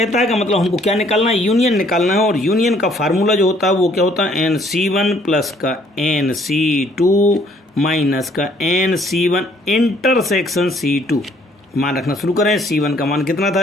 है का मतलब हमको क्या निकालना है, यूनियन निकालना है, और यूनियन का फार्मूला जो होता है वो क्या होता है NC1 प्लस का NC2 माइनस का NC1 इंटरसेक्शन C2। मान रखना शुरू करें। C1 का मान कितना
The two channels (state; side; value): normal; both; correlation 0.63